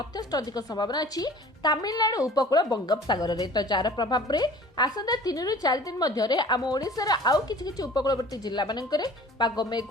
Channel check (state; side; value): normal; both; correlation 0.46